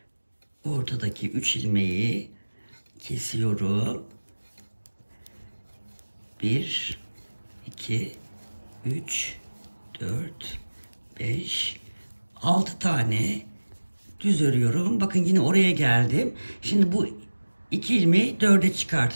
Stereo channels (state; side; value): inverted; both; correlation -1.00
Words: ortadaki 3 ilmeği kesiyorum. 1, 2, 3, 4, 5, 6 tane düz örüyorum. Bakın yine oraya geldim. Şimdi bu 2 ilmeği 4'e